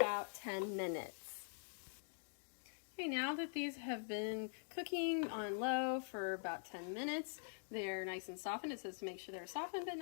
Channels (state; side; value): silent; right; digital silence